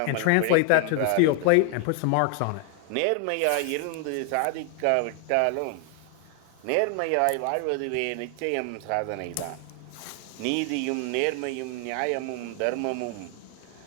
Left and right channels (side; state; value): both; different; correlation 0.00